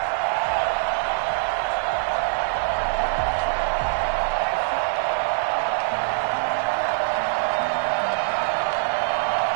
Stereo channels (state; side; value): silent; left; 63 dB below the other